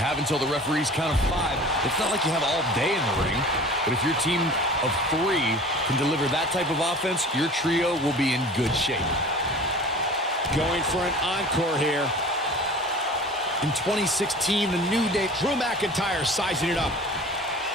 until the referee's count of 5. It's not like you have all day in the ring, but if your team of 3 can deliver that type of offense, your trio will be in good shape. Going for an encore here. In 2016, the New Day... Drew McIntyre sizing it up.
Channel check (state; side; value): normal; both; correlation 0.41